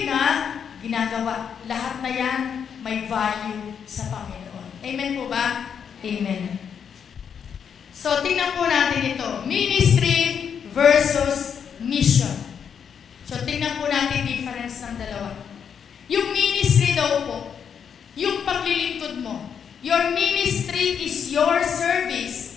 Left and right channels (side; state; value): right; quieter; 7.5 dB